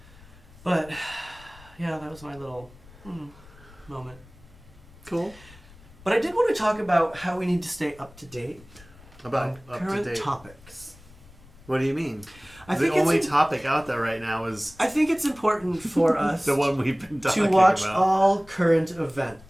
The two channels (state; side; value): noise; left; rumble, 23 dB below the sound